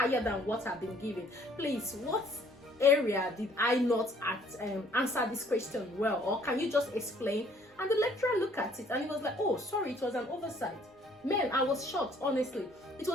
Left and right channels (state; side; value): normal; both; correlation 0.60